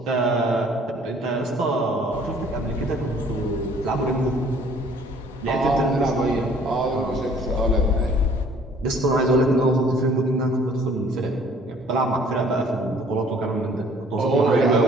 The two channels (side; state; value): both; normal; correlation 0.56